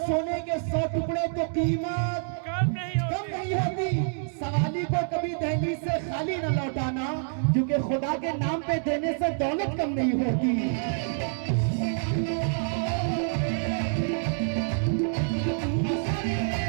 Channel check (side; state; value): left; silent; 60 dB below the other